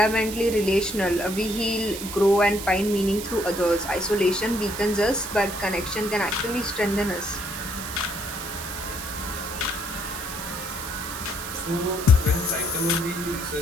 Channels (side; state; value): right; noise; hiss, 9 dB below the sound